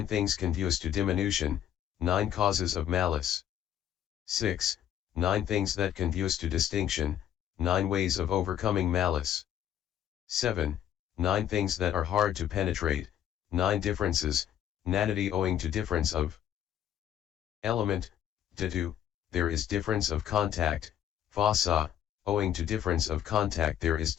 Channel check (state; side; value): quieter; right; 10.5 dB